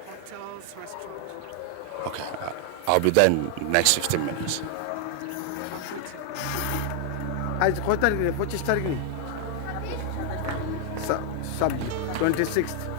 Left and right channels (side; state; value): both; different; correlation 0.00